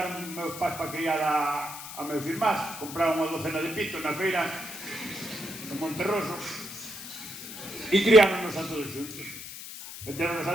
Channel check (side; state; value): left; noise; hiss, 11 dB below the sound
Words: meus pais para criar a meus irmás. Compraron unha docena de pitos na feira de Monterroso e criáronos a todos xuntos. Meteronos